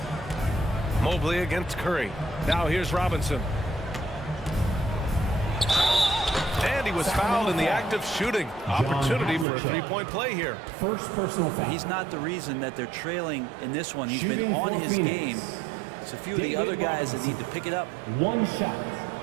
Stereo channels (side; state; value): left; drops out; at 9.5 s